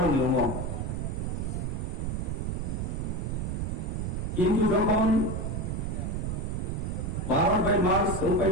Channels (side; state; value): right; noise; rumble, 1 dB below the sound